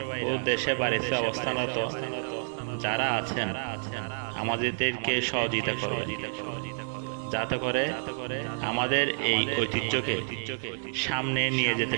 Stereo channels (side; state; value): left; silent; digital silence